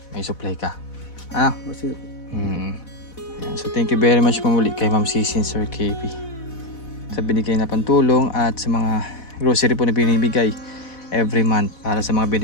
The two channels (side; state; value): right; late; 4.1 ms